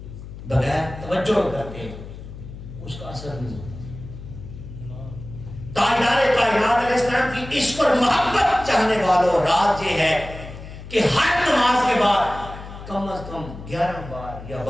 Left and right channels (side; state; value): left; noise; hum, 13 dB below the sound